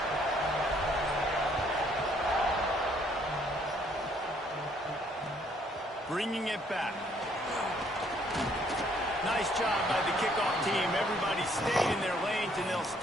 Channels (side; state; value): both; normal; correlation 0.65